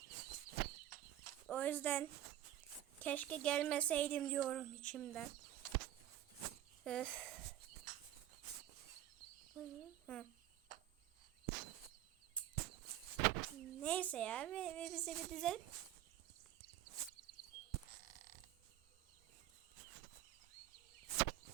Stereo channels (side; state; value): left; quieter; 12.9 dB